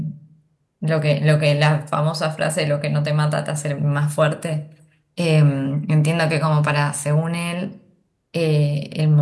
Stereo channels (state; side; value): identical; both; correlation 1.00